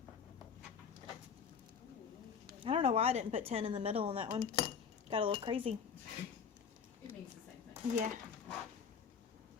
I don't know why I didn't put 10 in the middle on that one. Got a little crazy. It means the same thing. Yeah.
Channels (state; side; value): quieter; right; 6.6 dB